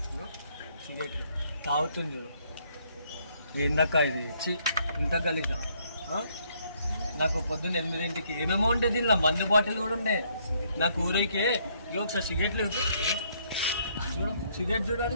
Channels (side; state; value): both; inverted; correlation -0.69